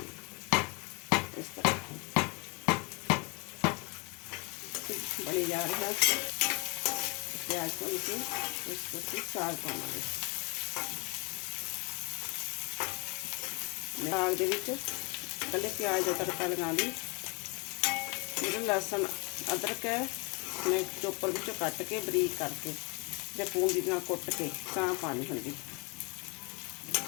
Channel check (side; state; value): right; quieter; 31.1 dB